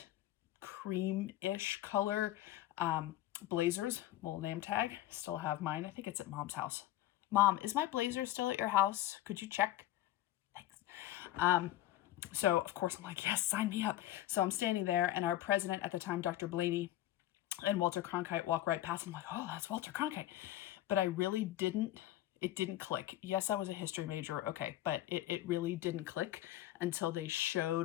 cream-ish color blazers, little name tag. Still have mine. I think it's at Mom's house. Mom, is my blazer still at your house? Could you check? Thanks. So of course I'm like, yes, sign me up. So I'm standing there, and our president at the time, Dr. Blaney, and Walter Cronkite walk right past. I'm like, oh, that's Walter Cronkite. But I really didn't, it didn't click. Yes, I was a history major, okay, but it really didn't click until they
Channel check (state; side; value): quieter; right; 14.2 dB